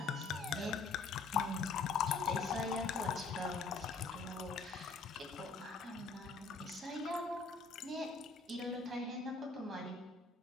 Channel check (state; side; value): quieter; right; 4.3 dB